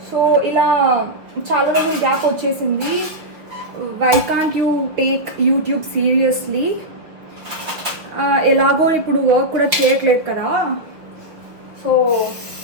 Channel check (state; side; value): late; left; 5.9 ms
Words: సో ఇలా చాలా రోజులు గ్యాప్ వచ్చేసింది. Why can't you take YouTube seriously? ఎలాగో ఇప్పుడు వర్క్ కూడా చేయట్లేదు కదా, సో